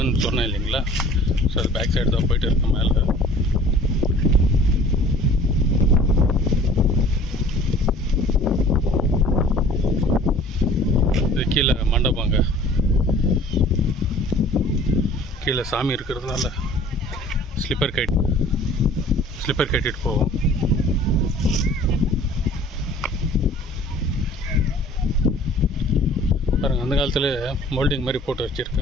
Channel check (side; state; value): both; normal; correlation 0.49